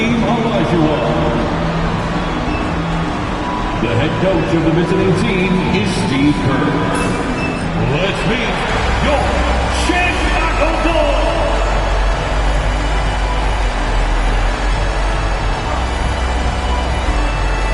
Olajuwon. The head coach of the visiting team is Steve Kerr. Let's meet your Chicago Bulls.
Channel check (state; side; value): identical; both; correlation 1.00